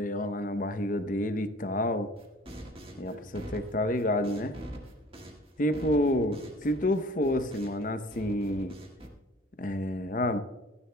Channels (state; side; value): normal; both; correlation 0.48